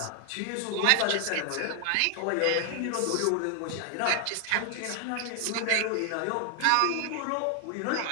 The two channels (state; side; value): different; both; correlation 0.00